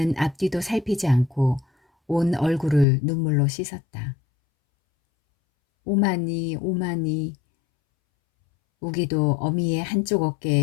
앞뒤도 살피지 않고 온 얼굴을 눈물로 씻었다. 오마니 오마니. 우기도 어미의 한쪽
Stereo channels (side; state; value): right; drops out; at 2.9 s